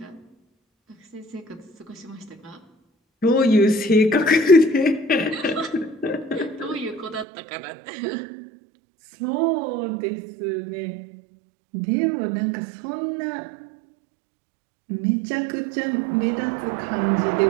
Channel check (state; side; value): drops out; left; at 7.2 s